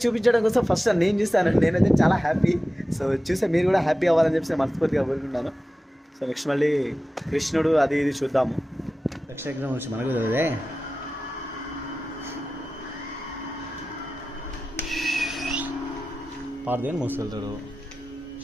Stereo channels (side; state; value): both; normal; correlation 0.95